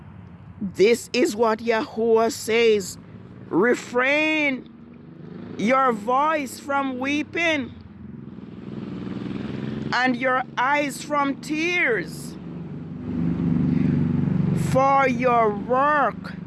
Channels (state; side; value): identical; both; correlation 1.00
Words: This is what Yahuwah says. Refrain your voice from weeping and your eyes from tears, for your work